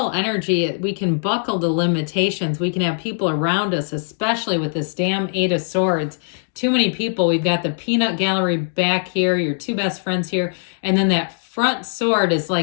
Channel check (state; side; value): silent; right; digital silence